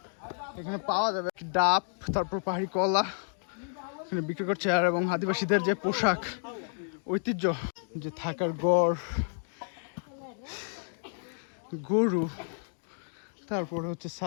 এখানে পাওয়া যাবে। ডাব, তারপর পাহাড়ি কলা এখানে বিক্রি করছে। আর এবং আদিবাসীদের যে পোশাক, ঐতিহ্য, যে থাকার গড়, গরু, তারপরে হচ্ছে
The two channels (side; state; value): right; silent; digital silence